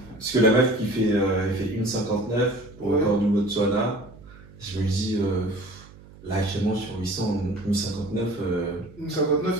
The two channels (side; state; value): right; noise; hum, 21 dB below the sound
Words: Parce que la meuf qui fait, elle fait 1,59 au record du Botswana. Je me dis, là actuellement sur 800, 1,59.